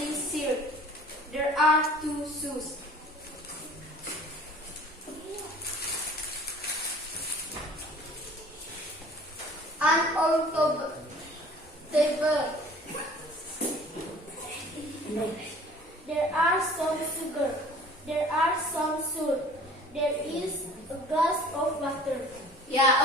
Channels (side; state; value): both; normal; correlation 0.49